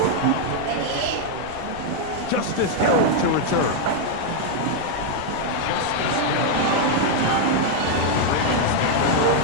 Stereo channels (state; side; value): different; both; correlation 0.00